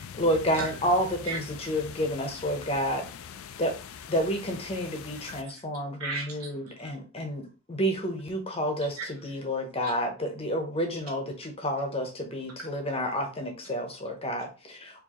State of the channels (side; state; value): both; normal; correlation 0.15